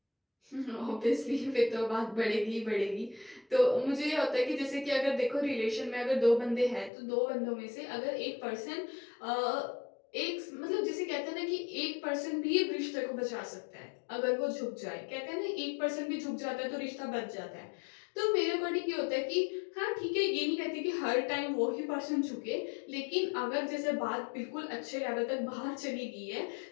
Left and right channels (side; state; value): right; drops out; at 6.9 s